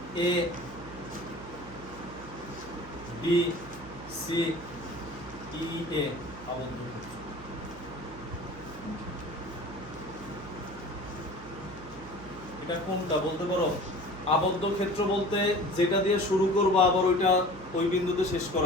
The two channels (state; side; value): noise; right; hum, 16 dB below the sound